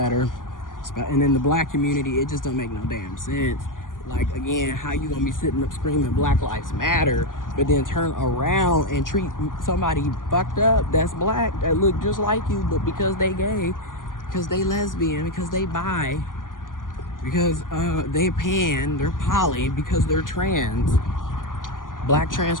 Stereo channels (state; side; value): late; right; 0.89 ms